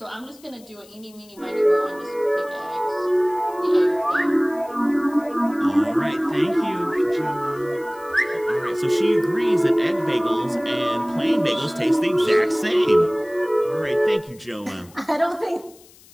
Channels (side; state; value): left; noise; hiss, 25 dB below the sound